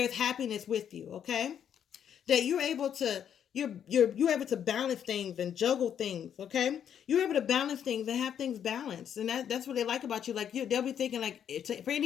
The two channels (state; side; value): quieter; right; 8.9 dB